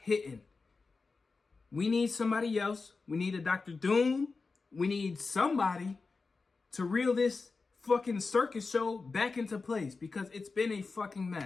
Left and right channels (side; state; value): right; quieter; 4.2 dB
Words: We need somebody else. We need a Doctor Doom. We need somebody to reel this fucking circus show back into place, because it's been a fucking